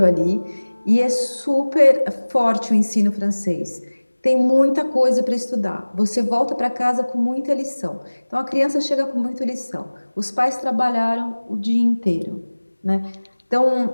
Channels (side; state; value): both; inverted; correlation -1.00